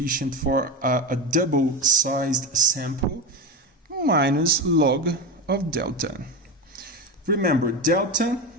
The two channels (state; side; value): normal; both; correlation 0.19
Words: for a double-sized sample minus log of delta. Remember, delta